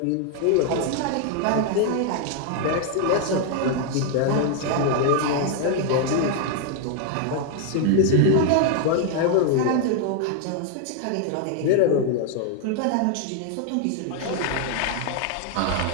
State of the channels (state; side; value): different; both; correlation 0.00